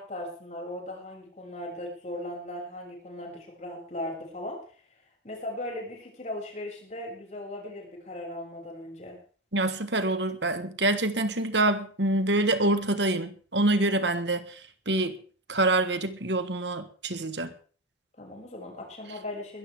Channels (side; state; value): both; normal; correlation 0.16